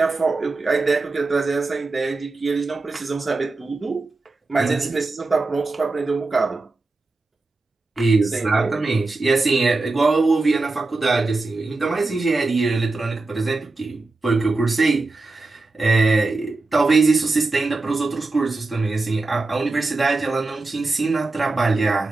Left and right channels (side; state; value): left; quieter; 3.4 dB